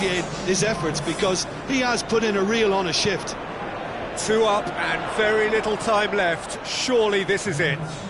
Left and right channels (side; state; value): both; identical; correlation 1.00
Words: his efforts, because he has put in a real honest shift. 2 up and very little time left. Surely this is it.